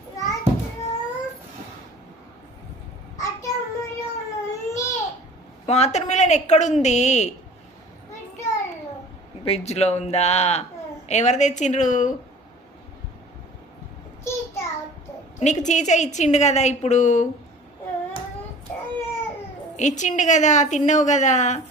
Water melon ఎక్కడుంది? ఫ్రిడ్జ్లో ఉందా? ఎవరు తెచ్చిండ్రు? నీకు చీచ ఇచ్చిండు కదా, ఇప్పుడు ఇచ్చిండు కదా, తిన్నావు కదా.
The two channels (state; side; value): normal; both; correlation 0.45